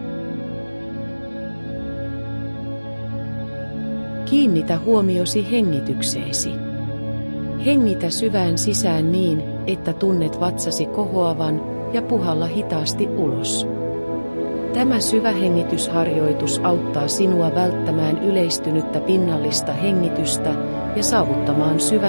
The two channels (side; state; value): both; inverted; correlation -1.00